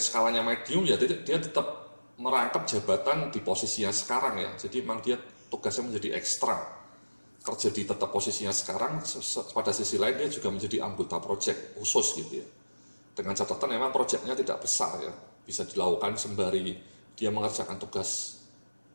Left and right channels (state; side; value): inverted; both; correlation -1.00